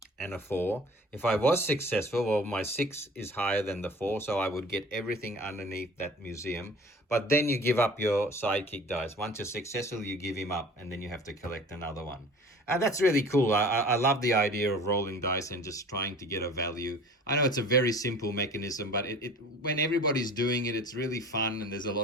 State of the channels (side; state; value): both; normal; correlation 0.44